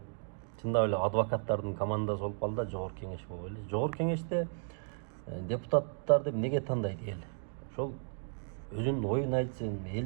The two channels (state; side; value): silent; left; 55 dB below the other